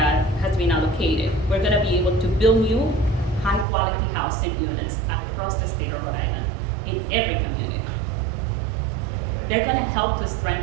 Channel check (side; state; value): left; drops out; at 3.7 s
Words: has been allocated, we're gonna be able to build new high-quality housing units across the state of Rhode Island, in every community. They're gonna help to